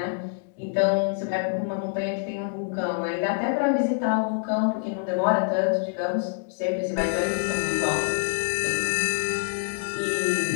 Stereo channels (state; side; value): silent; right; 61 dB below the other